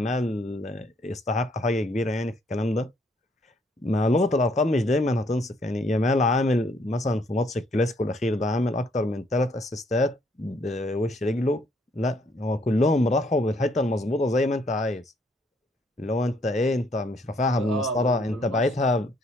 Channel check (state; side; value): normal; both; correlation 0.68